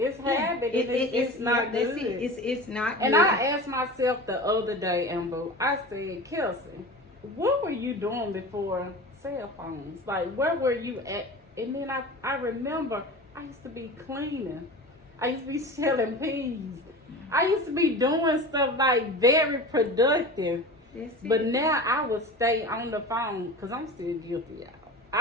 habit. It's not good. It's not good. And I asked myself the other day, Amber, I said, Kelsey, what were you doing before cell phones? Like, where were you at? And then I remember I used to be cleaning. I used to be selling peas. I used to be doing stuff like very productive. But now I would stay on the phone, because I'm still guilty, y'all.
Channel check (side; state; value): both; normal; correlation 0.33